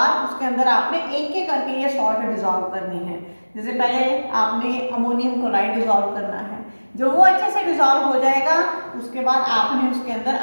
उसके अंदर आपने एक एक करके ये सॉल्ट डिजॉल्व करनी है। जैसे पहले आपने अमोनियम क्लोराइड डिजॉल्व करना है, जो वो अच्छे से डिजॉल्व हो जाएगा उसके बाद आपने उसके अंदर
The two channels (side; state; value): both; inverted; correlation -1.00